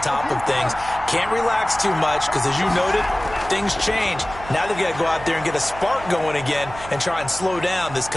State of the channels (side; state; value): right; noise; hum, 15 dB below the sound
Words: top of things. Can't relax too much because, as you noted, things change. Now they've got to go out there and get a spark going again and try and slow down this